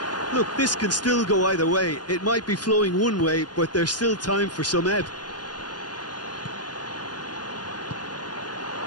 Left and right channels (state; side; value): late; right; 0.69 ms